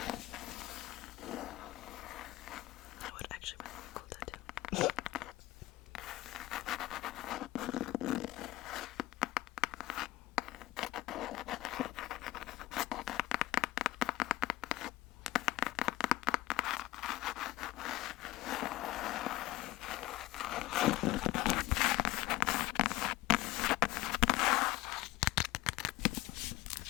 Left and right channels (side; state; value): right; quieter; 17.7 dB